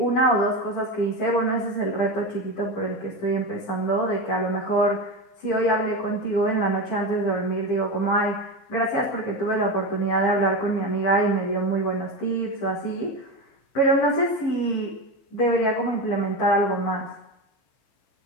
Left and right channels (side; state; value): right; late; 15 ms